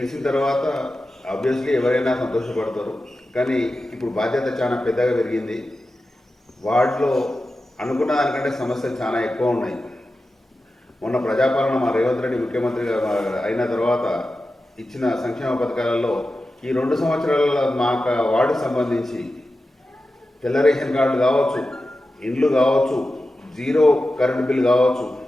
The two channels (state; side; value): normal; both; correlation 0.92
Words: తర్వాత ఆబ్వియస్లీ ఎవరైనా సంతోషపడతారు, కానీ ఇప్పుడు బాధ్యత చాలా పెద్దగా పెరిగింది. వార్డులో అనుకున్న దానికంటే సమస్యలు చాలా ఎక్కువ ఉన్నాయి. మొన్న ప్రజాపాలన మా రేవంత్ రెడ్డి ముఖ్యమంత్రిగా అయిన తర్వాత ఇచ్చిన సంక్షేమ పథకాలలో ఈ 2 సంవత్సరాల మా వార్డుకు సంబంధించి తెల్ల రేషన్ కార్డు కావచ్చు, ఇండ్లు కావచ్చు, 0 కరెంటు బిల్ కావచ్చు,